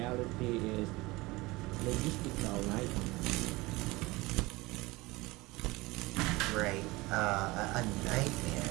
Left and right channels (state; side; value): quieter; left; 21.9 dB